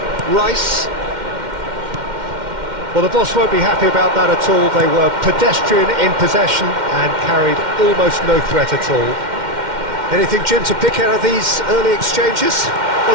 Rice. Well, the boss won't be happy about that at all. They were pedestrian in possession and carried almost no threat at all. Anything, Jim, to pick out of these early exchanges?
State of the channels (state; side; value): late; left; 2.1 ms